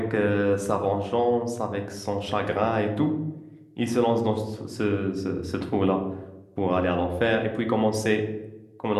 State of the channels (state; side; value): identical; both; correlation 1.00